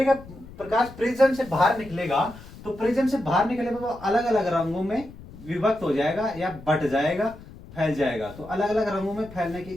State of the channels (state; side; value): noise; left; rumble, 18 dB below the sound